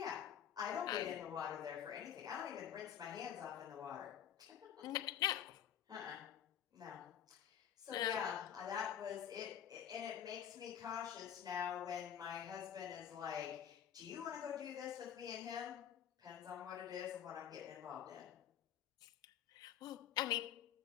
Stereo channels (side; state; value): right; quieter; 9.8 dB